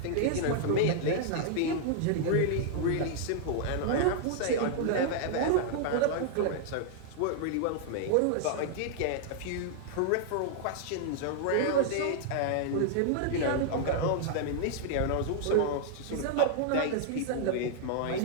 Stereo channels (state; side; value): different; both; correlation 0.00